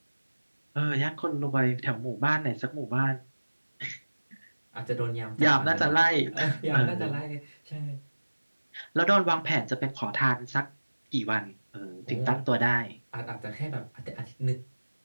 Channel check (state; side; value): inverted; both; correlation -1.00